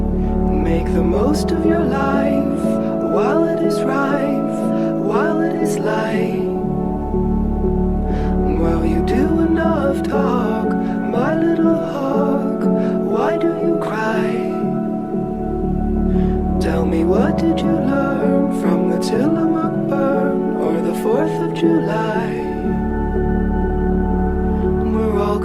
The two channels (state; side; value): identical; both; correlation 1.00